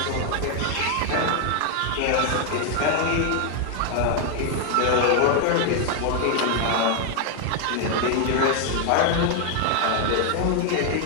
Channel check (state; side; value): different; both; correlation 0.00